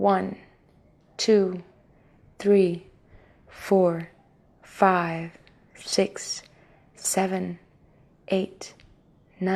2, 3, 4, 5, 6, 7, 8,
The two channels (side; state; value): both; identical; correlation 1.00